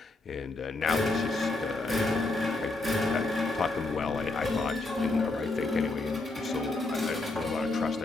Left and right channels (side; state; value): right; quieter; 3.1 dB